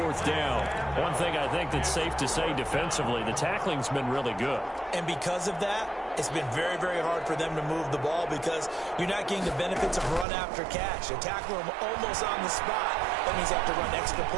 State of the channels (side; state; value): left; drops out; at 10.2 s